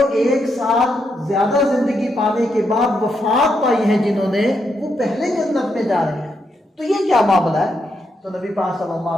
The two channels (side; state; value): both; normal; correlation 0.80